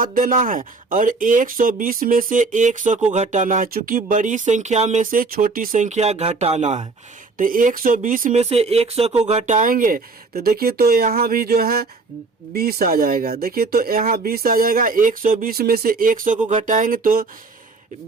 देना है और 120 में से 100 को घटाना है, चूंकि बड़ी संख्या में से छोटी संख्या घटाना है। तो 120 में से 100 को घटाएंगे तो देखिए, तो यहाँ भी जो है 20 आ जाएगा। देखिए, तो यहाँ 20 आ जाएगा। 120 में से 100 को घटाएंगे तो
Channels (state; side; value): quieter; left; 4.0 dB